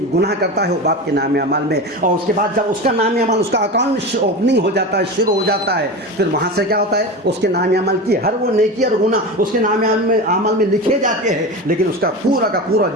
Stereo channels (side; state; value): both; normal; correlation 0.26